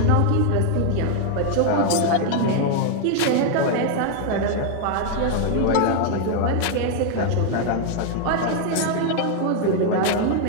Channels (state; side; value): different; both; correlation 0.00